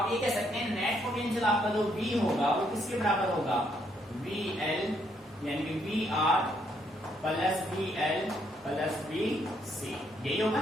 ये कह सकते हैं नेट पोटेंशियल आपका जो V होगा वो किसके बराबर होगा, VL यानी कि V R plus V L plus V C, यही होगा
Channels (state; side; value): normal; both; correlation 0.72